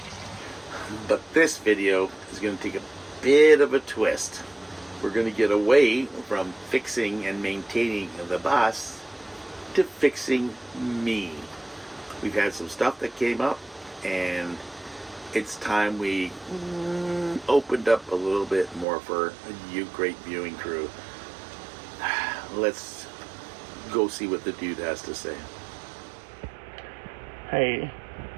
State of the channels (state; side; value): drops out; left; at 18.9 s